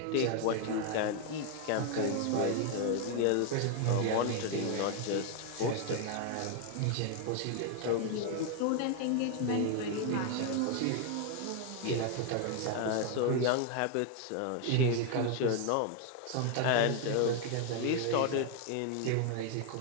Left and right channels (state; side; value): different; both; correlation 0.01